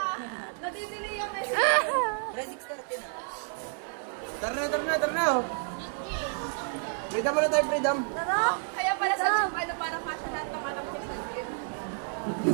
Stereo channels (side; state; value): left; silent; 58 dB below the other